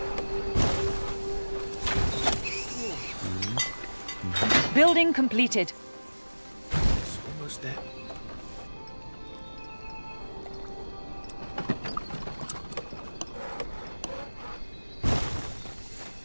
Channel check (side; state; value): both; inverted; correlation -1.00